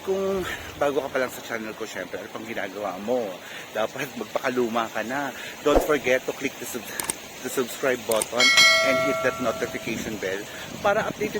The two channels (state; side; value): identical; both; correlation 1.00